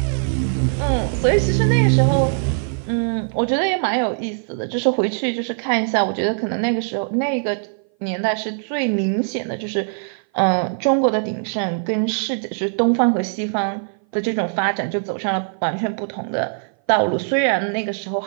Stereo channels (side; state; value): left; silent; 58 dB below the other